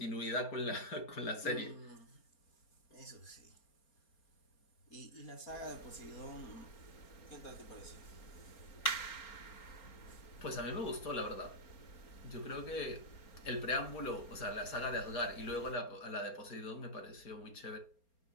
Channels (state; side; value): late; right; 4.3 ms